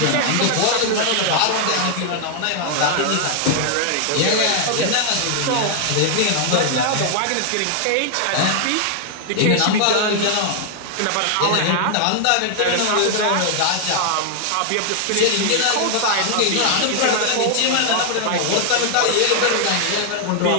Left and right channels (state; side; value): different; both; correlation 0.00